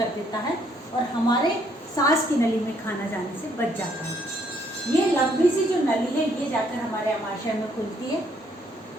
देता है और हमारे सांस की नली में खाना जाने से बच जाता है। ये लंबी सी जो नली है ये जाकर हमारे अमाशय में खुलती है।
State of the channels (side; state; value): both; normal; correlation 0.68